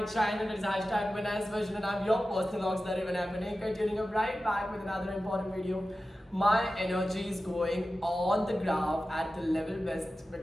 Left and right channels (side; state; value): both; normal; correlation 0.94